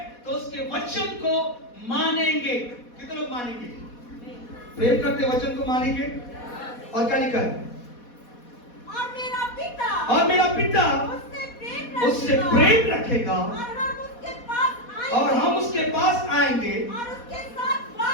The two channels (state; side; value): late; right; 4.2 ms